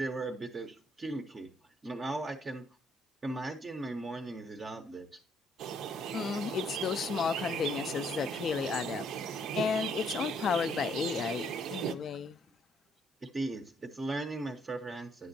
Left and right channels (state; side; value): normal; both; correlation 0.68